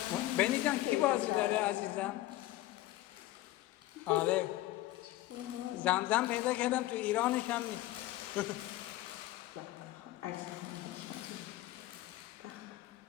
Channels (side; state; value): right; quieter; 16.3 dB